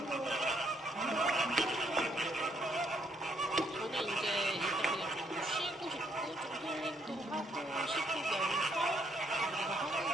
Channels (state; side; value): normal; both; correlation 0.70